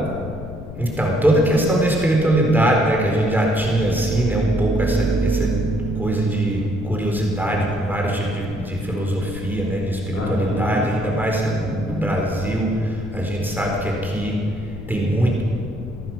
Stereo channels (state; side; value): noise; left; rumble, 11 dB below the sound